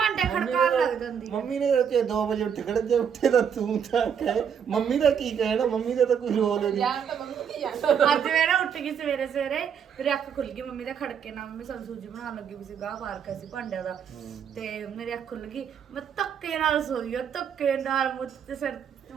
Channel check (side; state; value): left; quieter; 7.7 dB